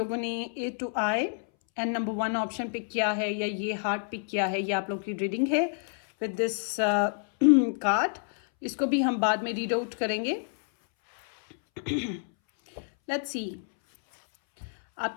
ने A to I and number 1 option pick किया है या ये हार्ट पिक किया है, ये आप लोगों की रीडिंग है विद दिस कार्ड। इसको भी हम बाद में रीड आउट करेंगे। लेट्स सी,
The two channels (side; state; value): right; silent; 59 dB below the other